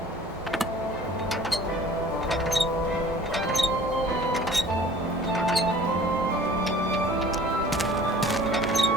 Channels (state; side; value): normal; both; correlation 0.48